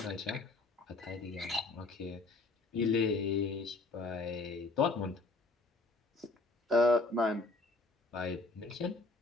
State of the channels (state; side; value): quieter; right; 3.3 dB